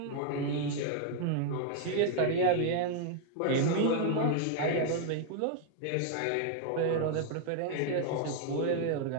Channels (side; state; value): both; different; correlation 0.00